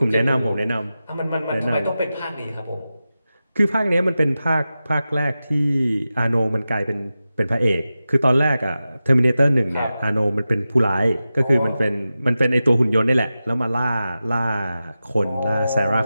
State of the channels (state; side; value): inverted; both; correlation -0.93